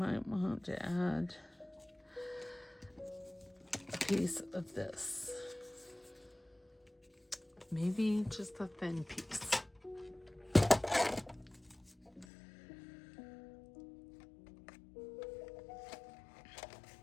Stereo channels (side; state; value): right; drops out; at 12.2 s